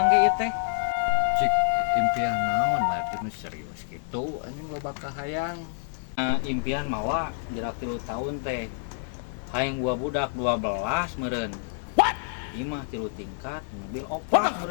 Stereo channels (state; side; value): silent; right; digital silence